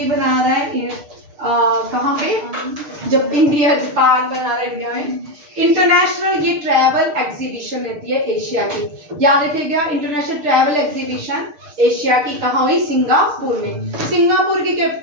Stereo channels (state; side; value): late; left; 6.8 ms